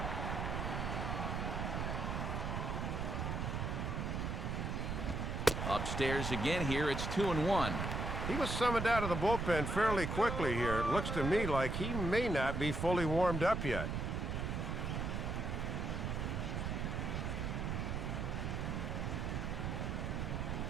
Upstairs again here, it's 2-1. He was summoned out of the bullpen fairly quickly here. It looks to me like he may not be fully warmed up yet.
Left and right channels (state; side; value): noise; right; rumble, 1 dB below the sound